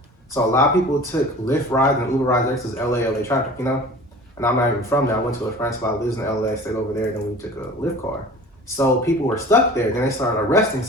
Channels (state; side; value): normal; both; correlation 0.42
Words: so a lot of people took Lyft rides and Uber rides there because LA traffic, And I'm not even from there. I went to a friend's spot, lives in LA, stayed over there, and then we took a Lyft car. So people were stuck there. Then they started arresting